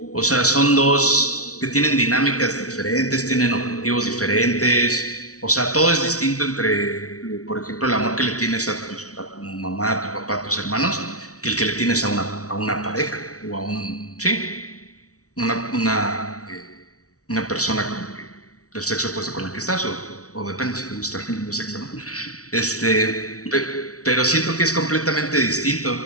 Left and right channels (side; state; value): right; late; 0.66 ms